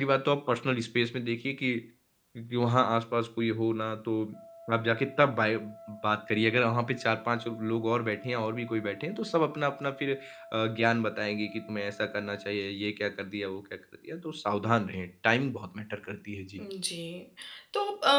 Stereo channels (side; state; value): both; identical; correlation 1.00